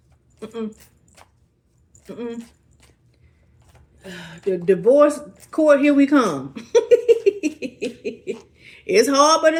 The divorce court, here we come. It's hard, but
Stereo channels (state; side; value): identical; both; correlation 1.00